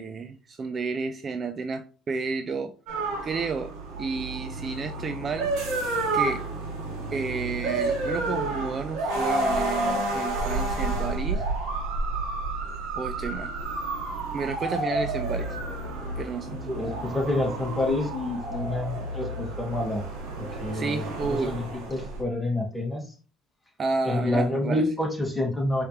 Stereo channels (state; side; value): normal; both; correlation 0.55